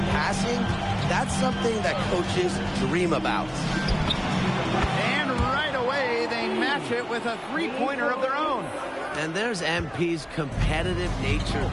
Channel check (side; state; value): both; identical; correlation 1.00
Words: passing, that's something that coaches dream about. And right away, they match it with a three-pointer of their own. And there's MP's competitive nature